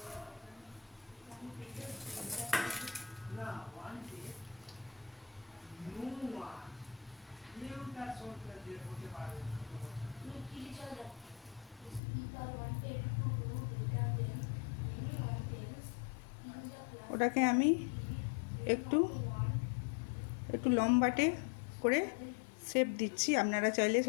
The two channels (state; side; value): drops out; right; at 12.0 s